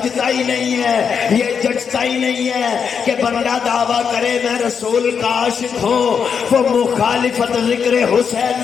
ہی نہیں ہے، یہ جچتا ہی نہیں ہے کہ بندہ دعویٰ کرے میں رسول کا عاشق ہوں، وہ مخالفت ذکر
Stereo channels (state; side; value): quieter; right; 6.7 dB